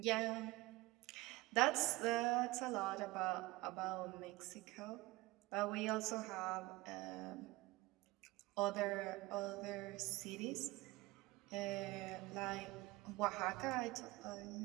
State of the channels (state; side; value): quieter; left; 20.6 dB